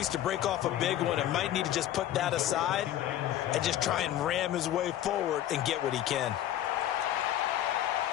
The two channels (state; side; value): quieter; right; 12.3 dB